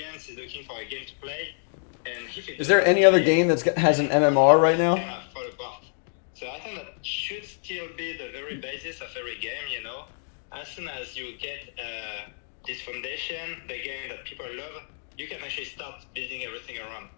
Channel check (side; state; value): right; silent; digital silence